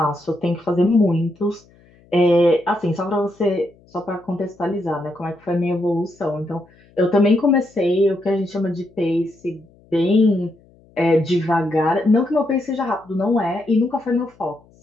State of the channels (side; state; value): left; noise; hum, 29 dB below the sound